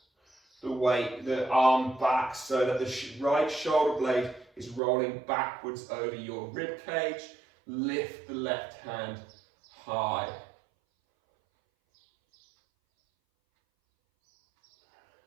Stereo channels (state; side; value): drops out; left; at 4.8 s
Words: the weight, the arm back so that the right shoulder blade is rolling backwards over your rib cage? Lift the left hand high.